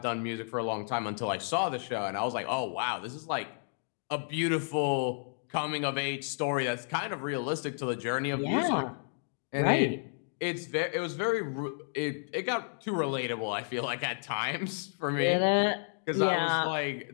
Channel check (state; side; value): silent; right; digital silence